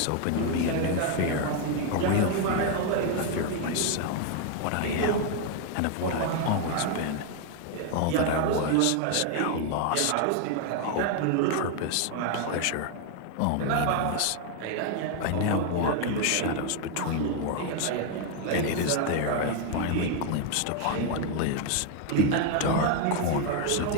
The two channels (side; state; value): both; different; correlation 0.00